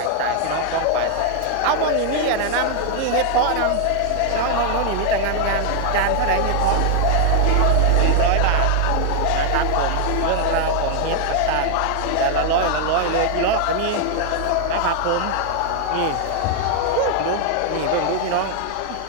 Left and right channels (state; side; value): different; both; correlation 0.00